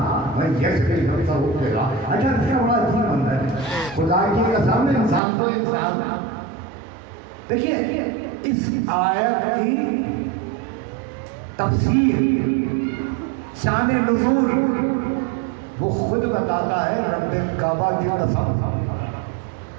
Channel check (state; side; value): drops out; left; at 5.2 s